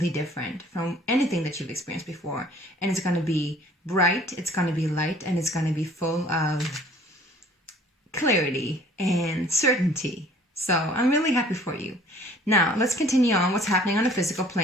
different from anything that you've experienced before. And it's going to be bright, it's going to be light, and it's going to be full of clarity and certainty. So I'm really happy for you. Now, let's continue on what's happening on the physical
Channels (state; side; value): normal; both; correlation 0.54